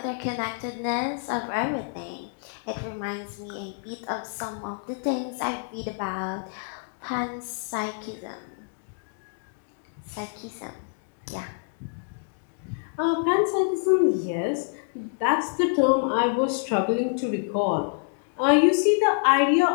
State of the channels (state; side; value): silent; right; digital silence